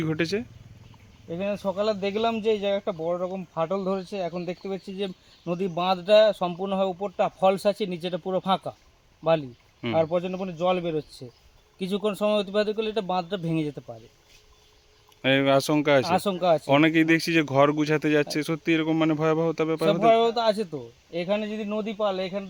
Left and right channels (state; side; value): identical; both; correlation 1.00